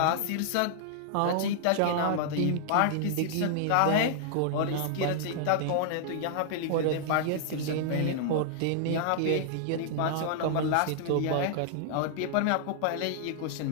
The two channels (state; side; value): different; both; correlation -0.01